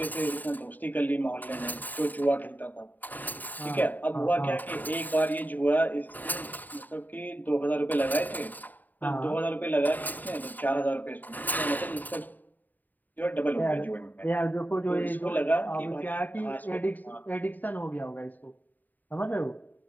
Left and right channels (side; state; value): right; late; 0.086 ms